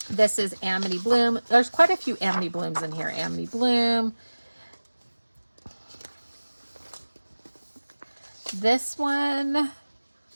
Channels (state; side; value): inverted; both; correlation -1.00